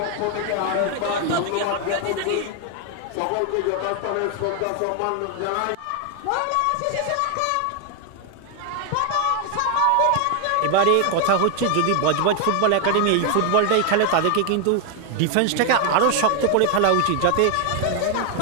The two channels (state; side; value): different; both; correlation 0.01